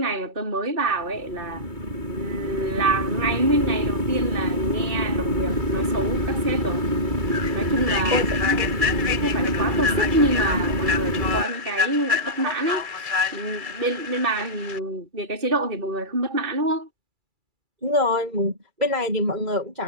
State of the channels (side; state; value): left; late; 2.3 ms